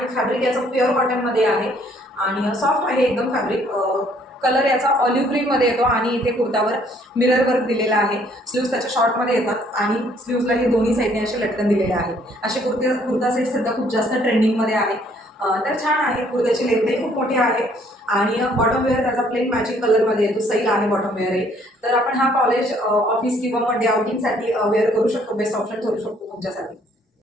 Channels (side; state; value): both; normal; correlation 0.63